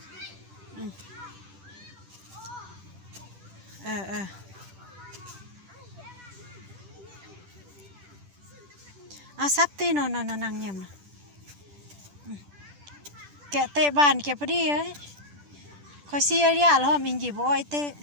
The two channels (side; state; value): left; late; 10 ms